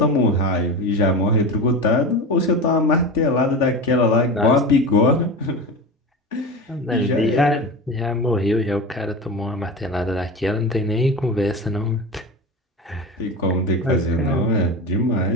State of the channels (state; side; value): normal; both; correlation 0.26